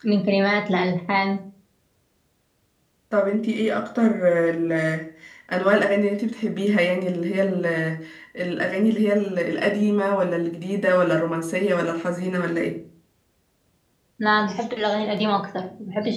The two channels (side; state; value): both; identical; correlation 1.00